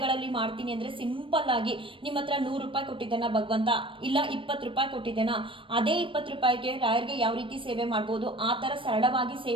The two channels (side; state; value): left; late; 0.25 ms